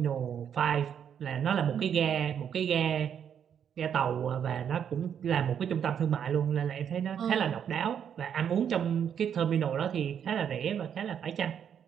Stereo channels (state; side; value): quieter; left; 8.4 dB